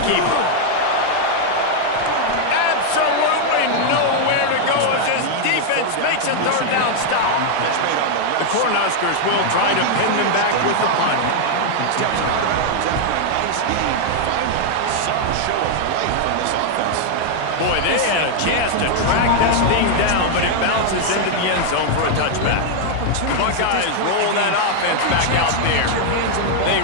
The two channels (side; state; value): both; different; correlation 0.00